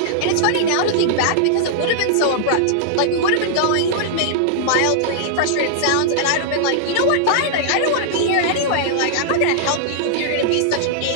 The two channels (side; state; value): both; different; correlation -0.01